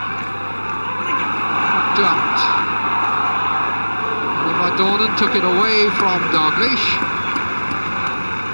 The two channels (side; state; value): both; inverted; correlation -1.00